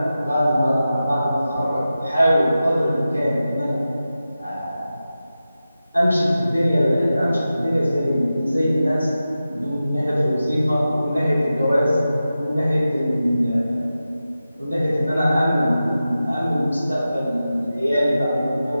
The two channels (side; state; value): both; inverted; correlation -0.93